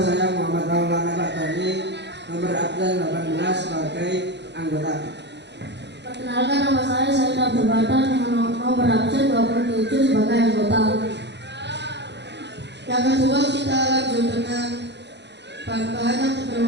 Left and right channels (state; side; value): late; left; 0.50 ms